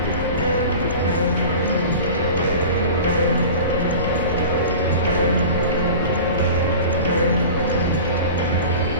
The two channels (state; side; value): inverted; both; correlation -0.36